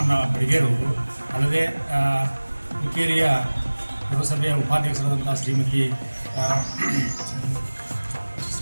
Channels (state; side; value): inverted; both; correlation -1.00